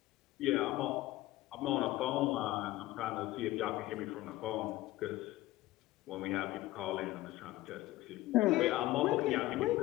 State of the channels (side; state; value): right; quieter; 17.0 dB